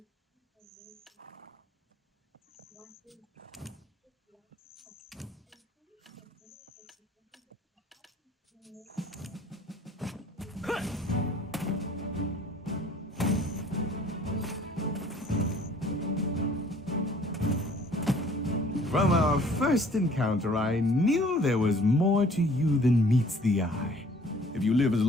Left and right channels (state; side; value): normal; both; correlation 0.55